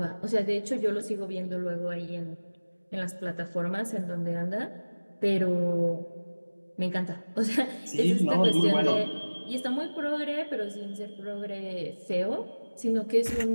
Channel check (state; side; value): inverted; both; correlation -1.00